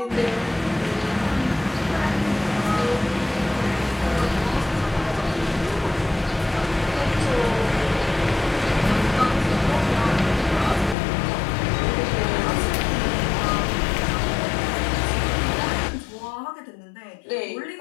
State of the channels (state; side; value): drops out; right; at 11.0 s